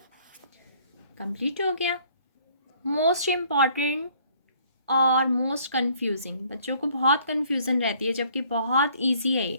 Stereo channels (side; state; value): both; inverted; correlation -0.61